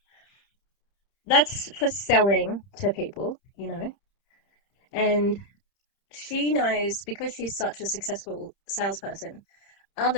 That's for selling to people, you know. And she knows because she's such a successful salesperson,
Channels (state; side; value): late; right; 30 ms